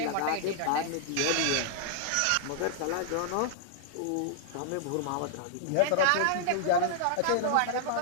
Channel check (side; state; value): both; different; correlation -0.01